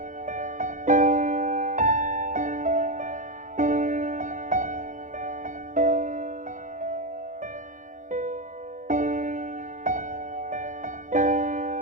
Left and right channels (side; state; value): left; late; 0.37 ms